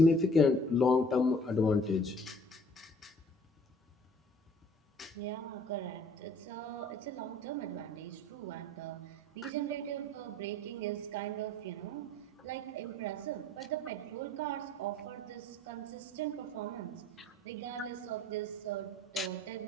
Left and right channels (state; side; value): normal; both; correlation 0.54